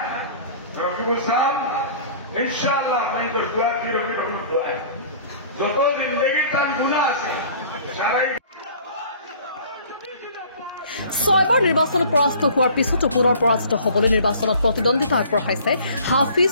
ৰকিবুল সাহেব ইনশাআল্লাহ আমি তো দোয়া কি ৰকিবুল দোয়া যত জিন্দগি তাৰ গুনাহ আছে সাৰাই ছয়বাৰ নিৰ্বাচনত পৰাস্ত হোৱাৰ পিছতো পুনৰ পৰাজিত হ'বলৈ নিৰ্বাচনত প্ৰতিদ্বন্দ্বিতা আগবঢ়াইছে হাফিজ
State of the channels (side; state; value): both; inverted; correlation -0.49